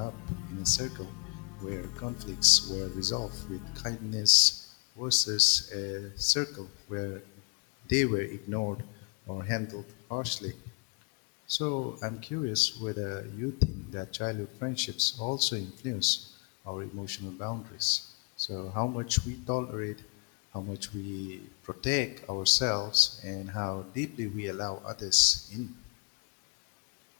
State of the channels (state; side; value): quieter; right; 36.8 dB